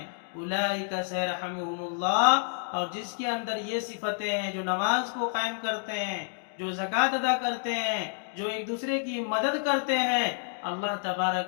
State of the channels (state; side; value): silent; right; 59 dB below the other